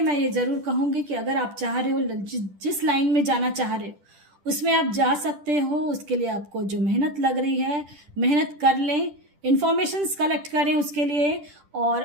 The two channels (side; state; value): left; late; 10 ms